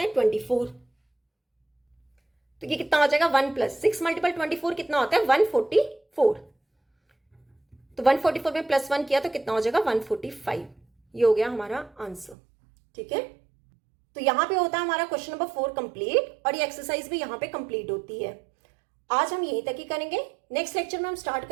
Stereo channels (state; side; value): drops out; left; at 12.4 s